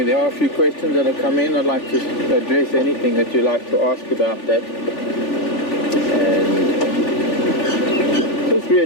are a few questions that have come in. I'd like to address anything that you'd like to ask about that. And just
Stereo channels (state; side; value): late; right; 3.4 ms